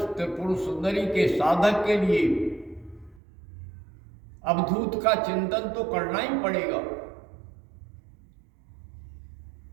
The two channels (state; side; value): drops out; left; at 3.2 s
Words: सुंदरी के साधक के लिए अवधूत का चिंतन तो करना ही पड़ेगा।